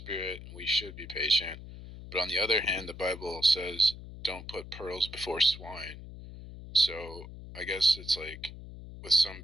and we should be patient. But on the other hand, the Bible says, don't put pearls before swine. So I guess it's like, with some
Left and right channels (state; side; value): noise; left; hum, 13 dB below the sound